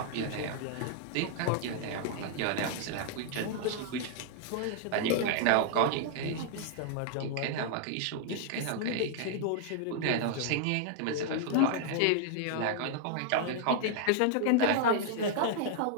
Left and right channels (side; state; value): both; different; correlation 0.00